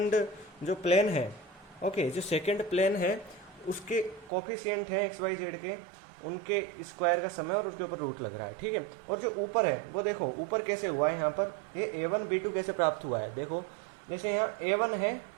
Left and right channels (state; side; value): drops out; left; at 4.3 s